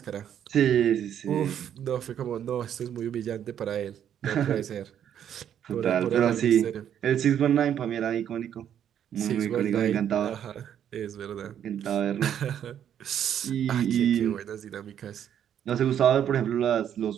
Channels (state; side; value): quieter; left; 9.6 dB